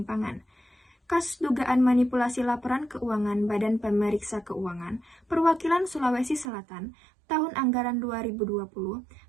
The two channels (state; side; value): drops out; left; at 6.5 s